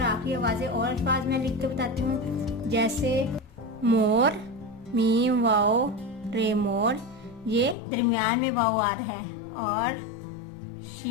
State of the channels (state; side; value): drops out; right; at 7.8 s